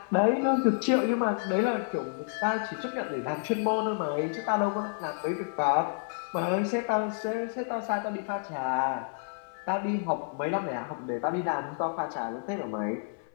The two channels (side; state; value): right; silent; 58 dB below the other